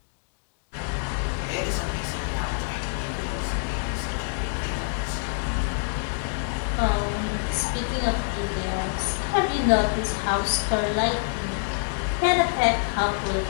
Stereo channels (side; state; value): right; silent; digital silence